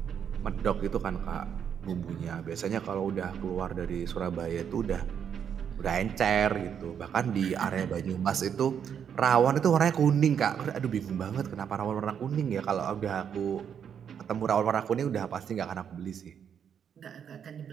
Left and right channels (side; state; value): left; quieter; 8.1 dB